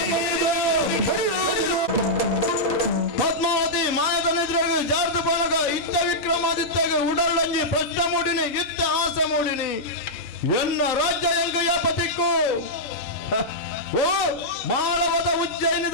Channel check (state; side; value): normal; both; correlation -0.09